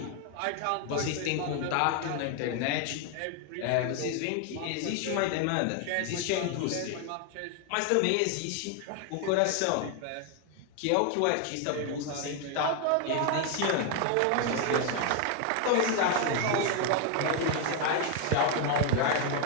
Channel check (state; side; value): different; both; correlation 0.01